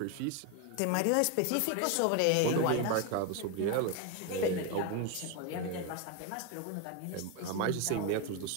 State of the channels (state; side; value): different; both; correlation 0.02